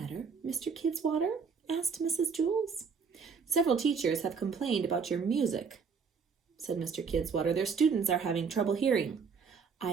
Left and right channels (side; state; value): left; quieter; 5.7 dB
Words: Mr. Kidswater? Asked Mrs. Jules. Several teachers have complained about your music, said Mr. Kidswater. Their students are having trouble hearing.